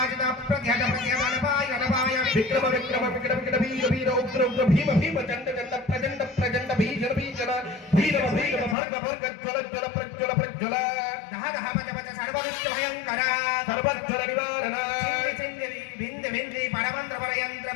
प्रत्यहत प्रत्यहत अनपाय अनपाय विक्रम विक्रम विकट विकट वीर वीर उग्र उग्र भीम भीम चंड चंड प्रचंड प्रचंड भीषण भीषण भीरव भीरव भर्ग भर्ग ज्वल ज्वल प्रज्वल प्रज्वल दह दह पच पच सर्वदुष्ट भयंकर सर्वज्वल निवारण छिन्न छिन्न भिन्न भिन्न परमंत्र परयंत्र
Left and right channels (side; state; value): right; drops out; at 8.8 s